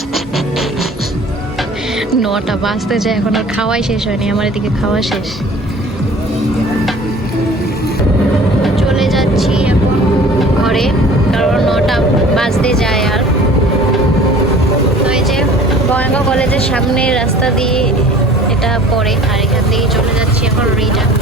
9টা বাজতে যায়, এখন আর খাওয়াই শেষ হয়নি, আমার এদিকে খাওয়া শেষ। চলে যাচ্ছি এখন ঘরে, কারণ 9টা বাজতে যায়। আর তো এই যে বঙ্গাইগাঁও কলেজের সামনে রাস্তা দিয়ে এটা পড়ে, আর এখান থেকে চলে যাচ্ছি এখন রিটার্ন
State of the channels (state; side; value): normal; both; correlation 0.47